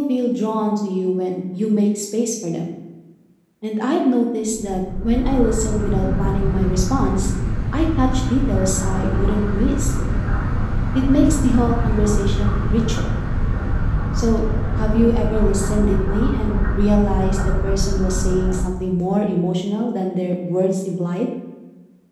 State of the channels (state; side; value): identical; both; correlation 1.00